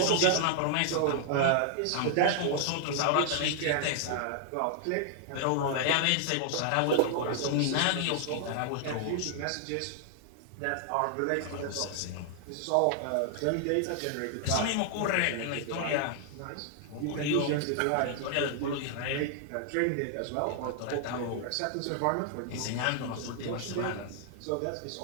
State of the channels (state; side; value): different; both; correlation 0.00